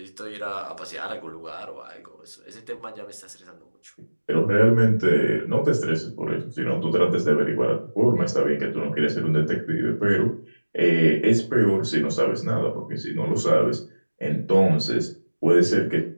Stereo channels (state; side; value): inverted; both; correlation -1.00